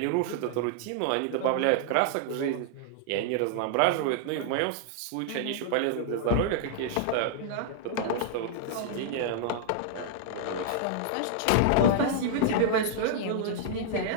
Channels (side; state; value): both; different; correlation -0.01